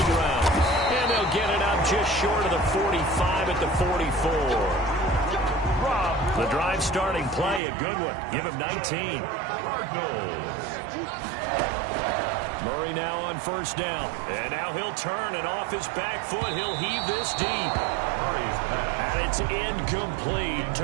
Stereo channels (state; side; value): drops out; left; at 7.6 s